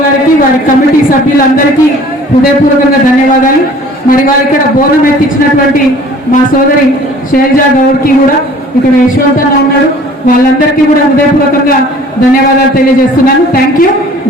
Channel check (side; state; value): both; normal; correlation 0.50